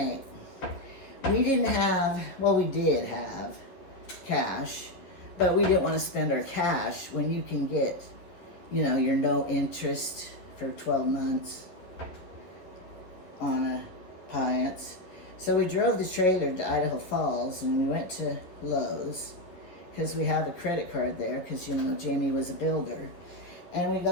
we did have cash, but we didn't want to spend our cash when you can get, you know, your no interest for 12 months on a Appliance. So we drove the trailer to Idaho Falls and we went to Lowe's because we have a credit card there because, you know, Jamie was a builder. And we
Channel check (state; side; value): late; right; 11 ms